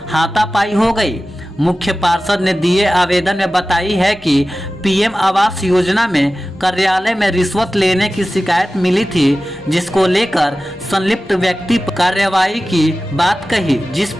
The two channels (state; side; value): normal; both; correlation 0.95